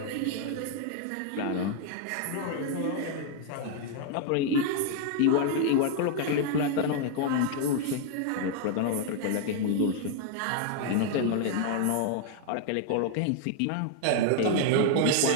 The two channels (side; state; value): both; different; correlation 0.00